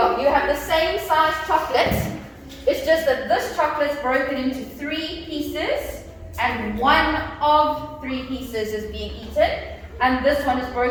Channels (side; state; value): both; identical; correlation 1.00